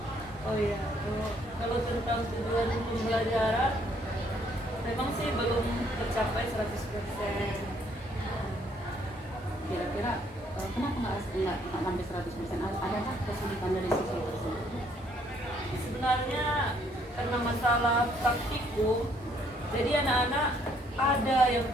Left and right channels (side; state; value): both; normal; correlation 0.66